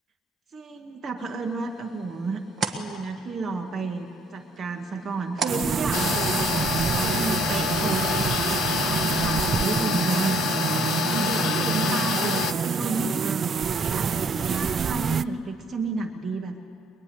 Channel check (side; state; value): both; normal; correlation 0.64